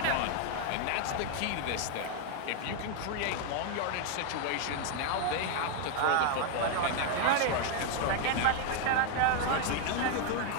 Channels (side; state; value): both; different; correlation 0.00